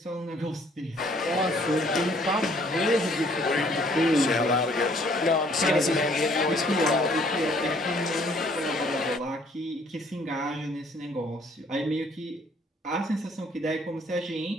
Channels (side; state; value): both; normal; correlation 0.61